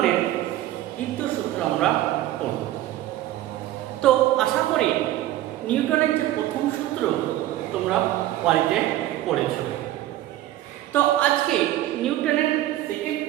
দ্বিতীয় সূত্র আমরা পড়ব। তো আশা করি নিউটনের যে প্রথম সূত্র তোমরা বাড়িতে পড়েছ। তো আজকে নিউটনের সেকেন্ড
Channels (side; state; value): left; quieter; 14.3 dB